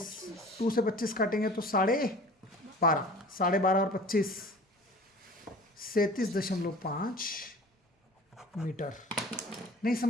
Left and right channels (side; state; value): both; normal; correlation 0.43